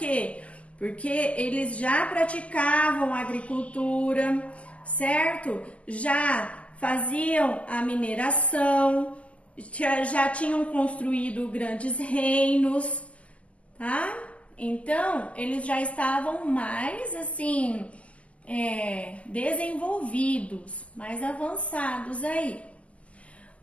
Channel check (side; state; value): right; late; 0.065 ms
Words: Porque eles já praticavam agricultura, certo? Já faziam a mineração, já tinham construído grandes reinos, tá? Então, eles já estavam mais, assim, desenvolvidos, mais avançados aí.